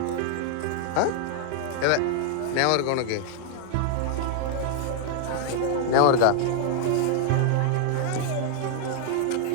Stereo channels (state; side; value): different; both; correlation 0.00